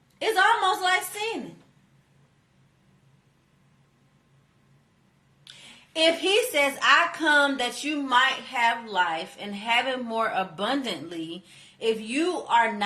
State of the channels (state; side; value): identical; both; correlation 1.00